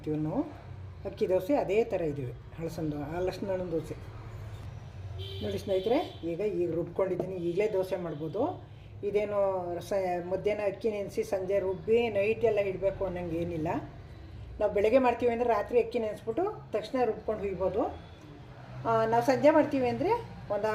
ನಾವು. ಅಕ್ಕಿ ದೋಸೆ ಅದೇ ಥರ ಇದ್ದೀವಿ. ಹಳಸಿನಣ್ಣು ದೋಸೆ. ನೋಡಿ ಸ್ನೇಹಿತರೆ, ಈಗ ರುಬ್ಕೊಂಡಿದ್ದೀನಿ. ಈಗಲೇ ದೋಸೆ ಮಾಡ್ಬೋದು. ಇದೇನು ಮಧ್ಯಾಹ್ನ ಅಕ್ಕಿ ನೆನೆಸಿ ಸಂಜೆ ರುಬ್ಬಿ ನೈಟ್ ಎಲ್ಲ ಇಡಬೇಕು ಅನ್ನೋಂಗೆ ಏನಿಲ್ಲ. ನಾವು ಬೆಳಗ್ಗೆ ಮಾಡ್ತೀವಿ ಅಂದರೆ ರಾತ್ರಿ ಅಕ್ಕಿ ನೆನೆಸ್ಬಿಟ್ಟು ತಕ್ಷಣ ರುಬ್ಕೊಂಡು ಹುಯ್ಬೋದು. ನಾವು ಸಂಜೆ ಮಾಡ್ತೀವಿ ಅಂದರೆ ಒಂದು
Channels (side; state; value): both; identical; correlation 1.00